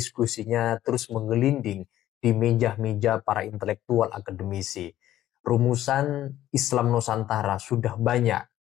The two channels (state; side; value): quieter; right; 13.1 dB